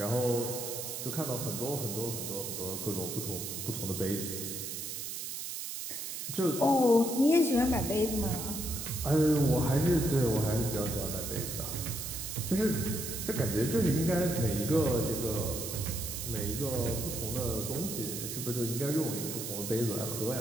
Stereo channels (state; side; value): noise; right; hiss, 6 dB below the sound